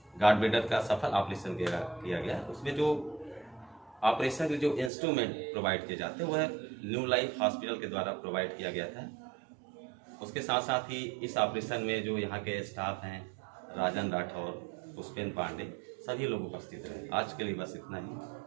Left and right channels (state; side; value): drops out; left; at 4.9 s